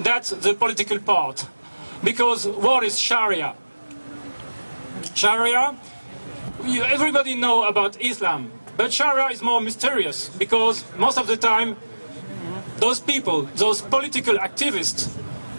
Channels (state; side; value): inverted; both; correlation -1.00